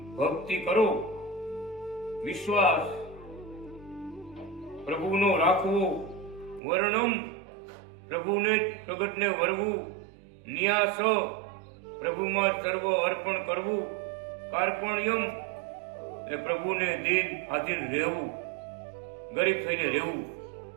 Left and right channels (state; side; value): drops out; left; at 6.6 s